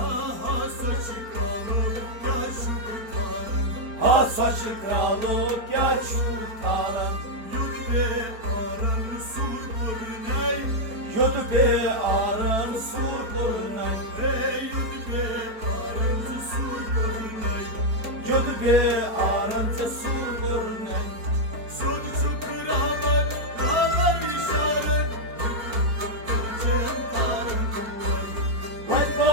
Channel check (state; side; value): late; left; 4.5 ms